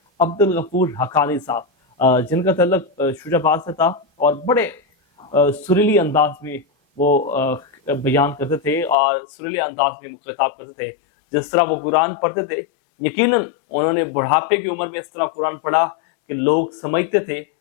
عبد الغفور حقانی صاحب جن کا تعلق شجاع آباد سے تھا اور بڑے سریلی انداز میں وہ بیان کرتے تھے اور سریلی انداز میں خطاب کرتے تھے. جس طرح وہ قرآن پڑھتے تھے، یقیناً انہوں نے بڑھاپے کی عمر میں اس طرح قرآن پڑھا کہ لوگ سمجھتے تھے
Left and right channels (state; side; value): drops out; right; at 9.0 s